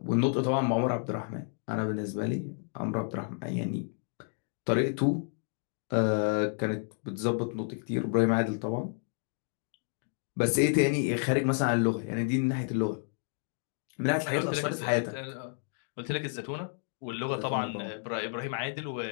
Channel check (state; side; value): silent; right; 57 dB below the other